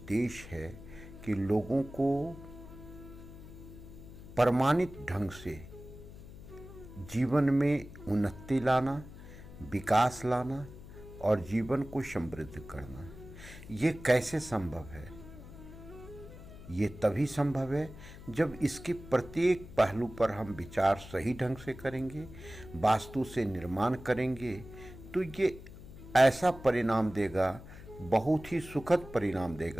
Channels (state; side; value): noise; left; hum, 16 dB below the sound